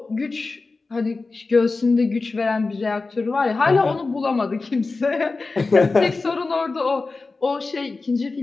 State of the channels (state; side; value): quieter; right; 3.8 dB